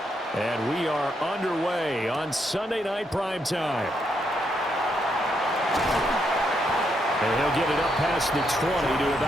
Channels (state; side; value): normal; both; correlation 0.78